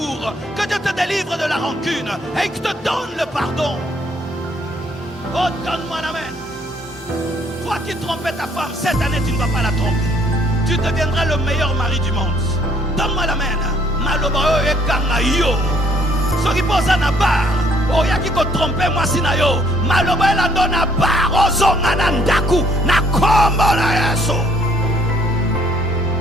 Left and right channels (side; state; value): both; normal; correlation 0.64